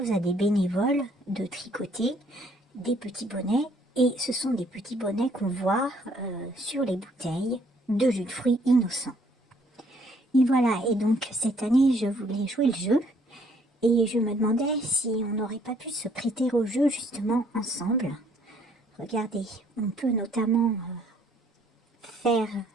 à des bénévoles de tricoter des petits bonnets et ce sont des petits bonnets qu'on voit sur les bouteilles de jus de fruits innocents. Et voilà, et donc cette année je voulais jouer le jeu et je me demandais si on n'aurait pas pu se prêter au jeu justement ensemble. Regardez, on peut notamment faire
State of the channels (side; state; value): both; normal; correlation 0.64